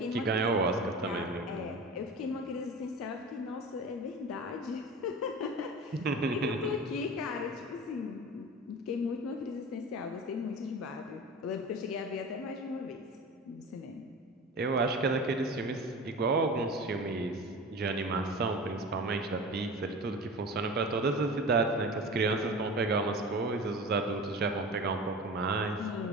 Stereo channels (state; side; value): normal; both; correlation 0.34